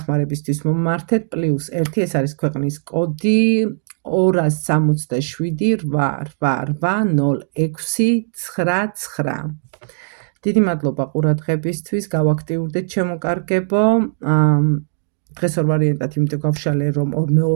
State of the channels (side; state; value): left; silent; digital silence